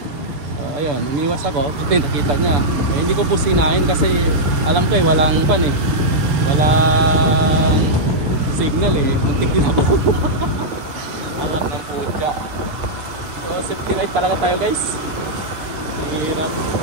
Ayun, umiwas ako, puti nakita niya. Hindi ko businahin kasi alam ko walang pan eh. Walang signal eh, muntik din ako. Anak ng putya. So safety ride talaga tayo guys. Hirap.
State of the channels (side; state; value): left; late; 6.8 ms